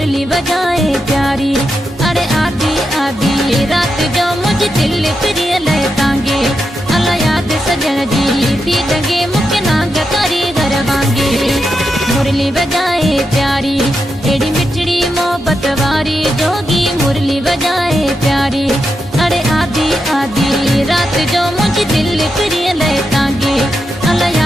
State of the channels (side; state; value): both; normal; correlation 0.86